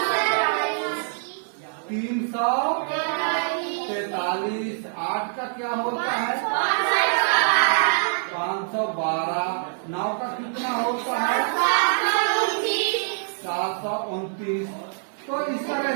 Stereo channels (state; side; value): silent; left; 62 dB below the other